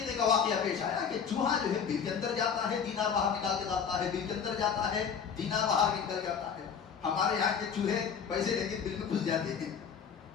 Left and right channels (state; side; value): quieter; right; 7.0 dB